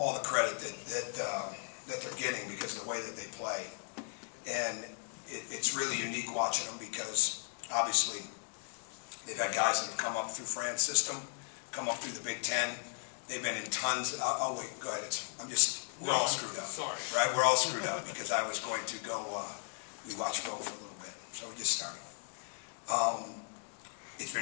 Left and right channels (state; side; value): silent; right; 54 dB below the other